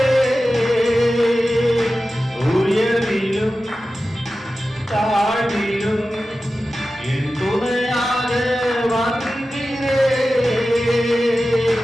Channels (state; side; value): normal; both; correlation 0.94